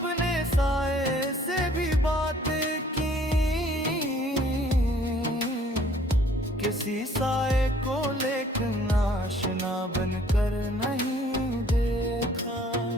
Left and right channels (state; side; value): normal; both; correlation 0.58